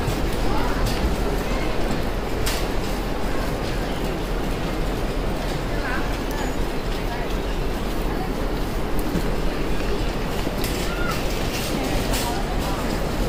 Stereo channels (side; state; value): both; identical; correlation 1.00